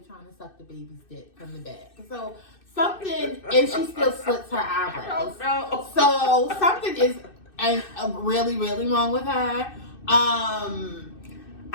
trying to suck the baby's dick from the back. So something, and she still slits her eyebrows. So something is really, really wrong with her.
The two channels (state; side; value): late; right; 2.6 ms